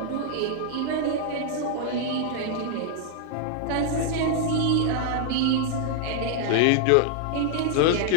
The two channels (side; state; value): both; different; correlation -0.01